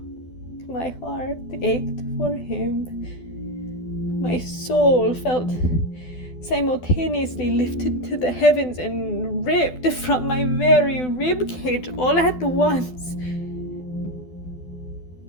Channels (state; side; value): late; right; 12 ms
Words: my heart ached for him. My soul felt simultaneously lifted to the heavens and ripped from my very rib cage all at once.